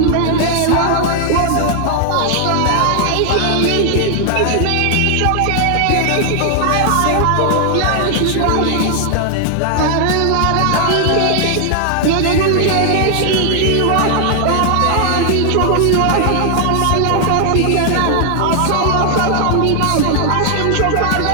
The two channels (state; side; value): different; both; correlation 0.00